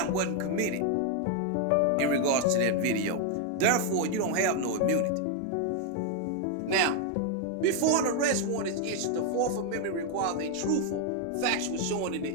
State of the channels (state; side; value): different; both; correlation 0.01